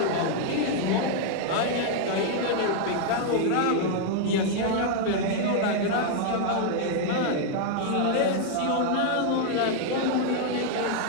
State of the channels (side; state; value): both; different; correlation 0.00